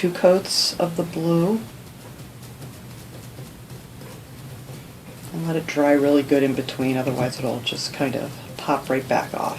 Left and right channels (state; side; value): identical; both; correlation 1.00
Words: coats of the blue. And let it dry really good in between, otherwise it'll just kind of pop right back